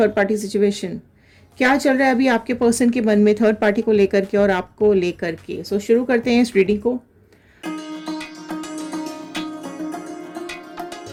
पार्टी सिचुएशन? क्या चल रहा है अभी आपके पर्सन के मन में थर्ड पार्टी को लेकर के और आपको लेकर के? सो शुरू करते हैं इस रीडिंग को।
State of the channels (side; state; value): both; identical; correlation 1.00